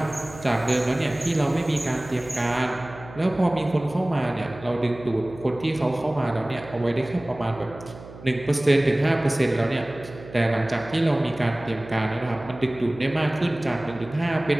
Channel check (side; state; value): right; noise; hum, 17 dB below the sound